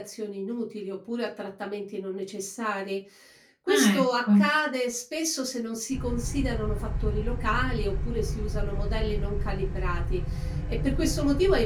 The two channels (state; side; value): identical; both; correlation 1.00